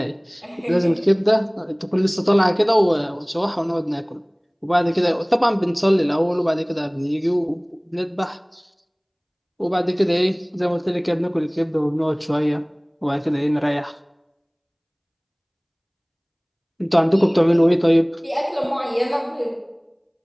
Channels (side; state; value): both; identical; correlation 1.00